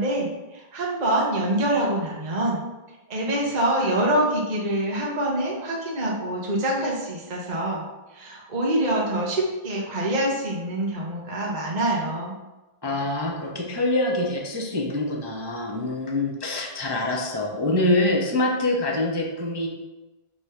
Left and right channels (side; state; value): left; late; 1.2 ms